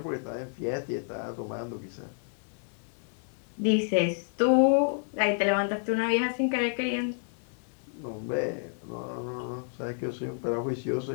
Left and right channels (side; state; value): right; silent; 58 dB below the other